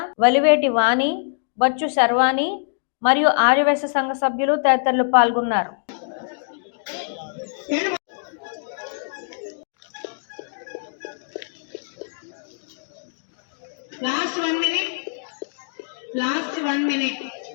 వలివేటి వాణి, బచ్చు శర్వాణి మరియు ఆర్యవైశ్య సంఘ సభ్యులు తదితరులు పాల్గొన్నారు. Last one minute.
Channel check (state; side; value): silent; right; digital silence